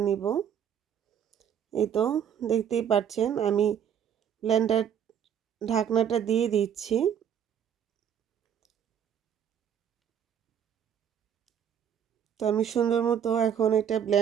নিব। এই তো দেখতেই পাচ্ছেন আমি ব্লেন্ডার ঢাকনাটা দিয়ে দিচ্ছি। তো আমি সুন্দর মতো এখন এটা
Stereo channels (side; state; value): left; quieter; 8.8 dB